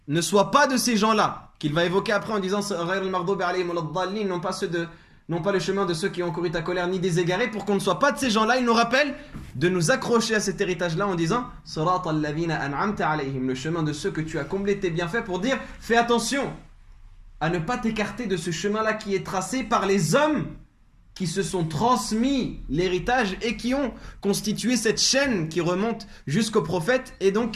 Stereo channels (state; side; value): identical; both; correlation 1.00